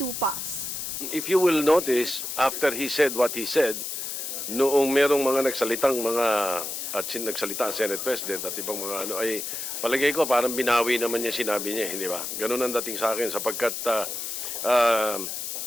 If you will notice, after he said what he said, noong merong mga nagsalitang mga nagsalita ang Senate President at ibang mga ay palagay ko parang binawi naman niya sinabi niya, hindi ba? Ganun ang dating sa akin sapagkat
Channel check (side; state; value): left; noise; hiss, 5 dB below the sound